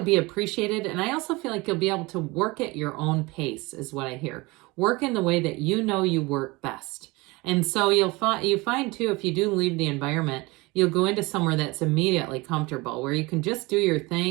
be appreciated. And I also feel like you'll be able to work at your own pace, is what I hear. Work in the way that you know you work best. And so you find too, if you do leave the environment, you'll go into somewhere that's immediately comfortable, where you can just do your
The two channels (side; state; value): left; quieter; 23.5 dB